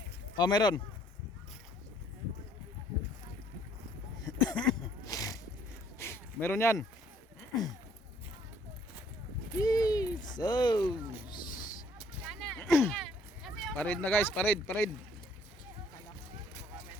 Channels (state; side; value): normal; both; correlation 0.62